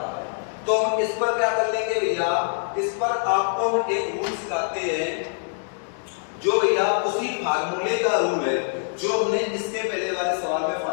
है, तो हम इस पर क्या कर लेंगे भैया, इस पर आपको हम एक रूल सिखाते हैं जो भैया उसी फार्मूले का रूल है जो हमने इसके पहले वाले सवाल में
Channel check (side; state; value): right; silent; 62 dB below the other